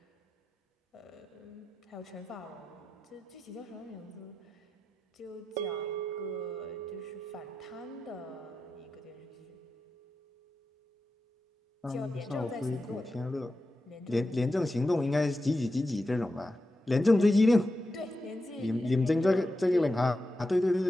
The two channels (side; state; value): both; normal; correlation 0.91